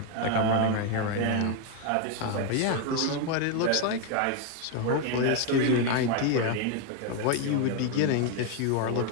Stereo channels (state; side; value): different; both; correlation 0.01